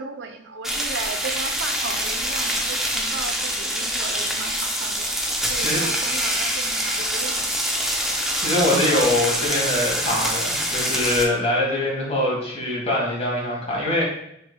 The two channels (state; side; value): normal; both; correlation 0.29